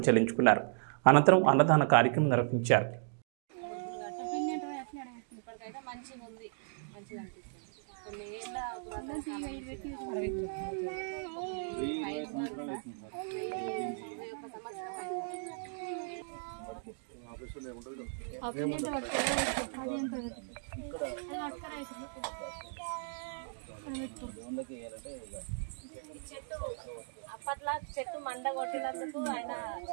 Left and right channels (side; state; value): left; silent; digital silence